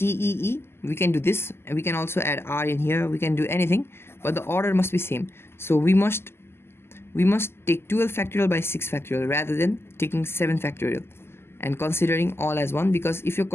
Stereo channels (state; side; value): late; right; 0.12 ms